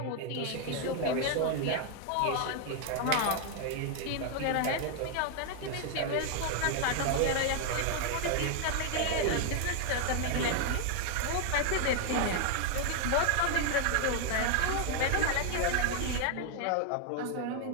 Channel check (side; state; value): both; different; correlation 0.00